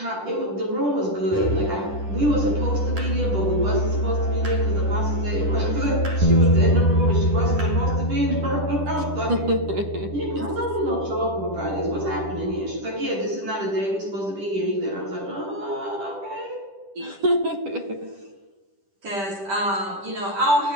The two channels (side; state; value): left; late; 10 ms